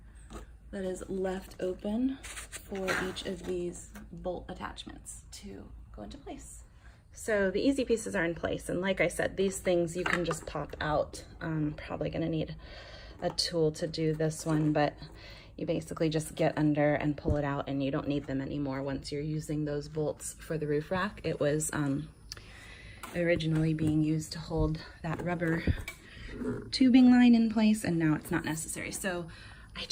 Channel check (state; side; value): identical; both; correlation 1.00